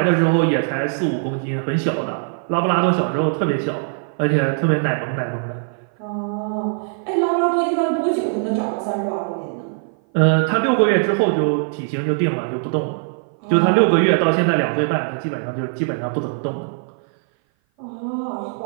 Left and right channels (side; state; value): left; silent; 57 dB below the other